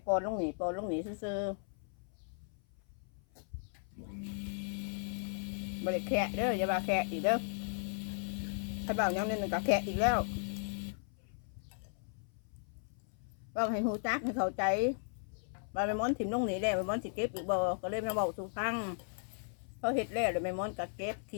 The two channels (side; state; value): right; silent; 54 dB below the other